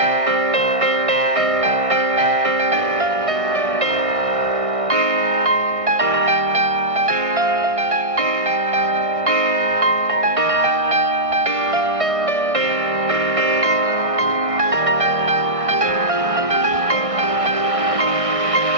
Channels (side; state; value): left; late; 1.6 ms